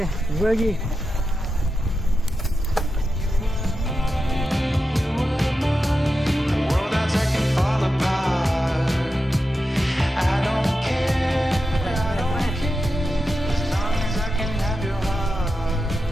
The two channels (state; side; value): normal; both; correlation 0.90